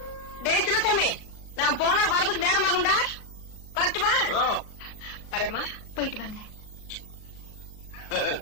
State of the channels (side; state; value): right; late; 38 ms